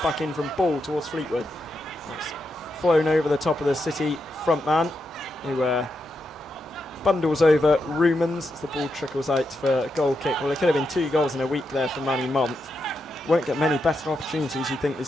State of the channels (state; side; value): normal; both; correlation 0.84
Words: in from Ball towards Fleetwood. That's flown over the top of the City front man, who bundles over Rumans as the ball trickles out for a goal kick. Well, it could have been 2 goals in a week there for Manny Month. Won't get many better opportunities, you think,